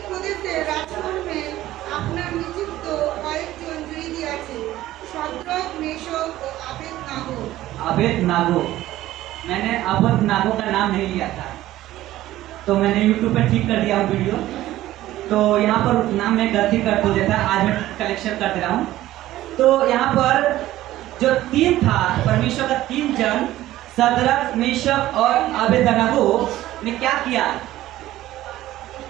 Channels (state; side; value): quieter; left; 15.0 dB